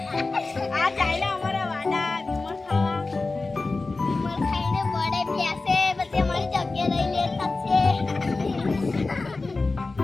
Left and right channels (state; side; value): quieter; right; 3.6 dB